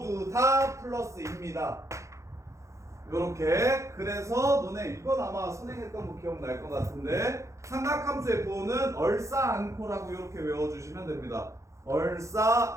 다 플러스입니다. 요렇게. 그래서 너네 이건 아마 선행했던 거 기억날 것 같은데 삼각함수의 부호는 얼싸안코라고 이렇게 외워주시면 됩니다.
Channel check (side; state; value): left; late; 0.15 ms